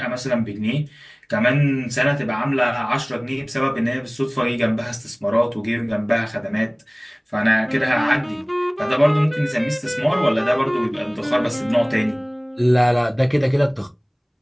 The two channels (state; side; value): identical; both; correlation 1.00